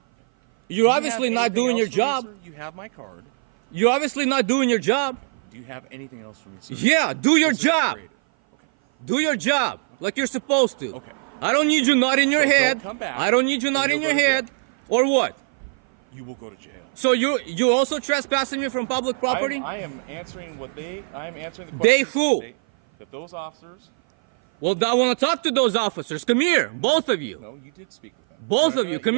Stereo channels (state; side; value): silent; left; 56 dB below the other